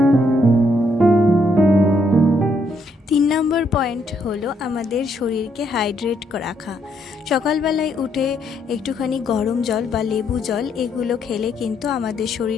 3 নম্বর পয়েন্ট হলো আমাদের শরীরকে হাইড্রেট রাখা। সকালবেলায় উঠে একটুখানি গরম জল বা লেবু জল এগুলো খেলে কিন্তু আমাদের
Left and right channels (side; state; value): both; normal; correlation 0.73